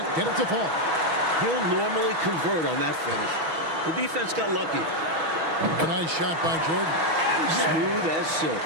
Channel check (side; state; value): left; late; 6.2 ms